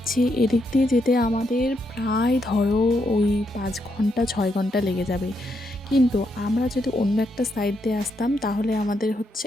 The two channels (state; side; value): normal; both; correlation 0.79